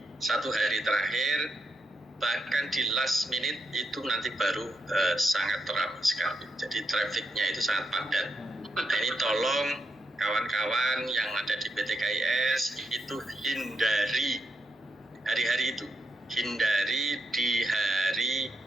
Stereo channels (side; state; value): both; normal; correlation 0.84